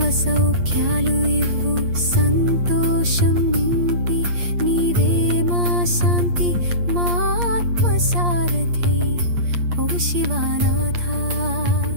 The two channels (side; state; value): left; late; 8.5 ms